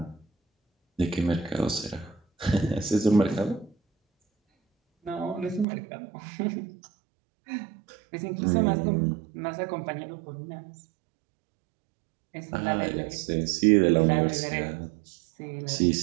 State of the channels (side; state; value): left; drops out; at 5.7 s